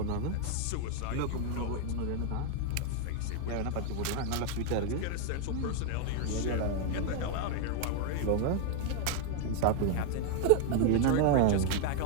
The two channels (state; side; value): different; both; correlation 0.00